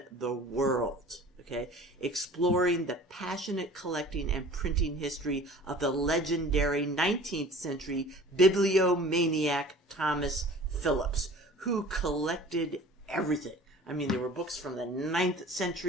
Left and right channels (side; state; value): both; normal; correlation 0.45